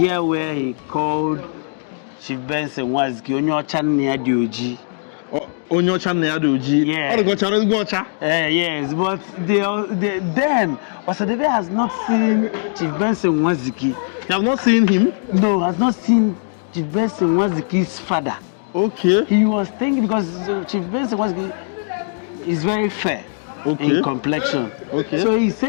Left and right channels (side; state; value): right; silent; digital silence